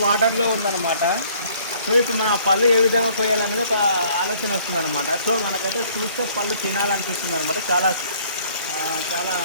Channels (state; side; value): inverted; both; correlation -0.59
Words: వాటర్లో ఉందన్నమాట. సో ఇప్పుడు మన పళ్ళు ఏ విధంగా పోయాలనేది ఒక ఆలోచన వస్తుంది అనమాట. సో మనకైతే చూస్తే పళ్ళు తినాలనిపిస్తుంది అనమాట. చాలా చాలా